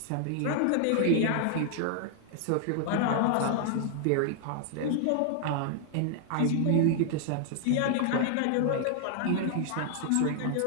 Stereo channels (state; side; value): different; both; correlation 0.00